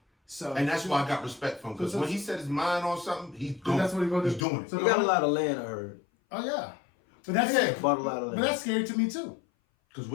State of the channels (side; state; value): right; drops out; at 4.5 s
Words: So, And that's why I got respect for him. Because when he set his mind on something, he's doing that's what he's gonna do. He's doing it. So He got a lot of land, I heard. Oh yeah, but that's Yeah. Bought a lot of but land. that's scary to me too. Because